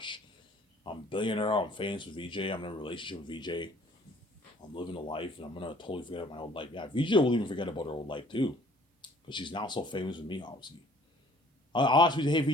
I'm a billionaire. I'm famous with VJ. I'm in a relationship with VJ. I'm living a life, and I'm gonna totally forget about my old life. Yeah, VJ will even forget about her old life too, because she's now so famous with me, obviously. I'll ask you, hey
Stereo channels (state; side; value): normal; both; correlation 0.56